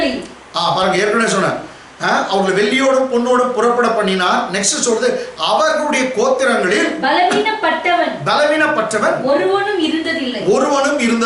பாருங்க, ஏற்கனவே சொன்னேன், அவர்களை வெள்ளியோடும் பொன்னோடும் புறப்பட பண்ணினார். நெக்ஸ்ட் சொல்றது, அவர்களுடைய கோத்திரங்களில் பலவீனப்பட்டவன் ஒருவனும் இருந்ததில்லை.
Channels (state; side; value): identical; both; correlation 1.00